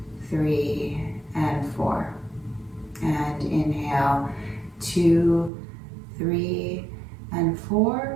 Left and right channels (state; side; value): drops out; left; at 5.5 s